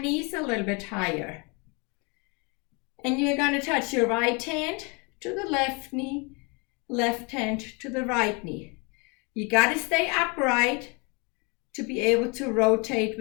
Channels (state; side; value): quieter; right; 30.9 dB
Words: a little bit higher. And you're going to touch your right hand to the left knee, left hand to the right knee. You got to stay upright to be able to rotate